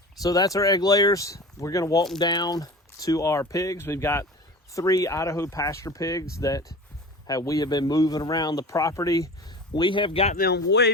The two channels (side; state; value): both; normal; correlation 0.35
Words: So that's our egg layers. We're gonna walk them down to our pigs. We've got 3 Idaho pasture pigs that we have been moving around the property. We have got them way